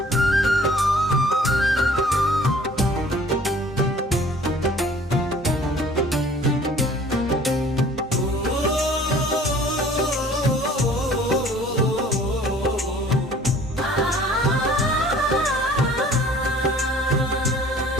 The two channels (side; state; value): both; normal; correlation 0.52